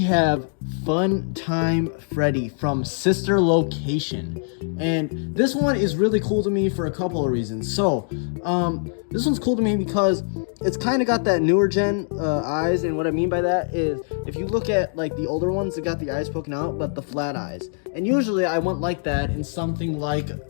Fun Time Freddy from Sister Location, and this one is really cool to me for a couple of reasons. So this one's cool to me because it's kind of got that newer gen eyes, and what I mean by that is if you look at like the older ones, they got the eyes poking out but the flat eyes, and usually I want like that in something like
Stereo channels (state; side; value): silent; right; digital silence